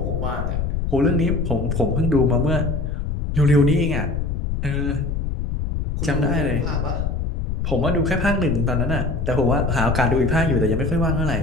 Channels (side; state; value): left; noise; rumble, 2 dB below the sound